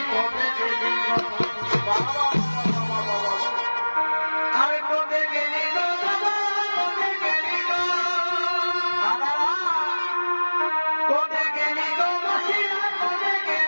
কবে গেলি গো বাবা আরে কবে গেলি গো বাবা কবে গেলি গো কবে গেলি গো বসিয়া কবে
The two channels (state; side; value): inverted; both; correlation -1.00